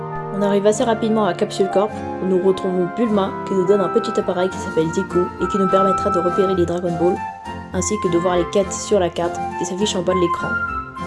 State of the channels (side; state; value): both; identical; correlation 1.00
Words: On arrive assez rapidement à Capsule Corp, où nous retrouvons Bulma qui nous donne un petit appareil qui s'appelle Zico et qui nous permettra de repérer les Dragon Ball, ainsi que de voir les quêtes sur la carte qui s'affiche en bas de l'écran.